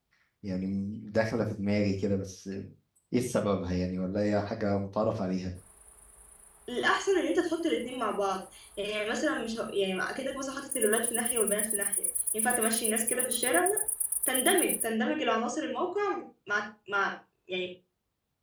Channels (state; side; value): identical; both; correlation 1.00